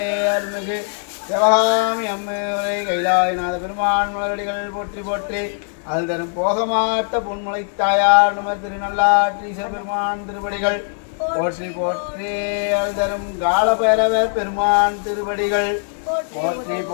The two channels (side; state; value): right; silent; digital silence